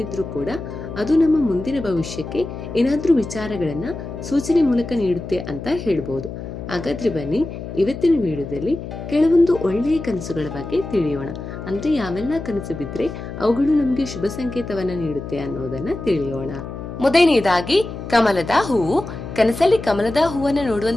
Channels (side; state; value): left; noise; hum, 9 dB below the sound